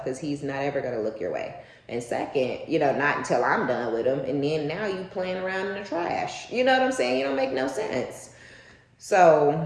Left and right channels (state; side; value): identical; both; correlation 1.00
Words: because he's not ever going to look your way. And second, you know, not until I'm done with him, and then now you playing around in the trash. You know what I'm saying? You don't make no sense. So